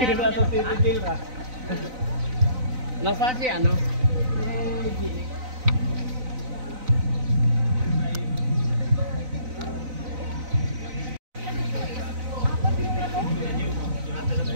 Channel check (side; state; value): left; late; 4.0 ms